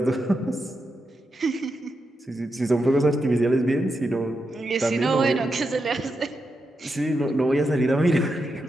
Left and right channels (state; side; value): normal; both; correlation 0.86